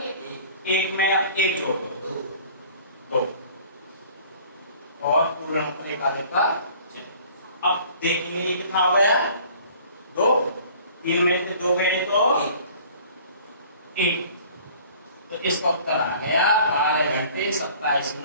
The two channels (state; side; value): inverted; both; correlation -0.50